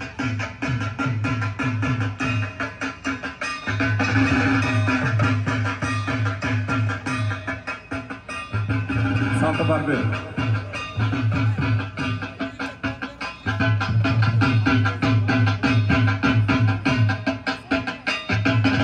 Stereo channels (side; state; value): both; identical; correlation 1.00